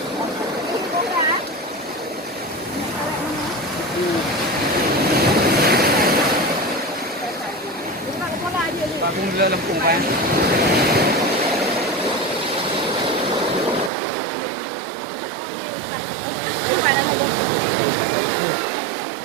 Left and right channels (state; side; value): drops out; left; at 13.9 s